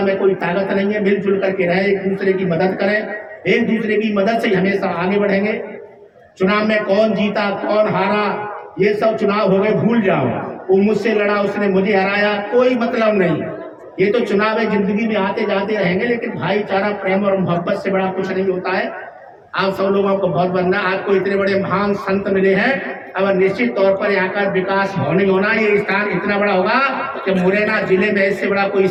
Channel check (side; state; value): both; identical; correlation 1.00